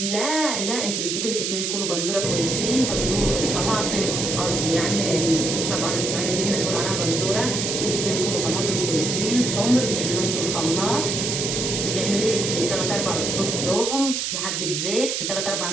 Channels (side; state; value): right; noise; hiss, 1 dB below the sound